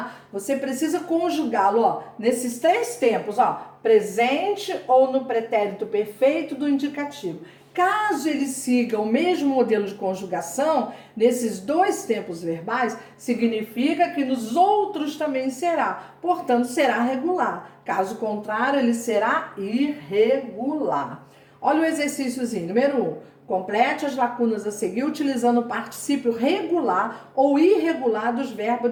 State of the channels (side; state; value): both; identical; correlation 1.00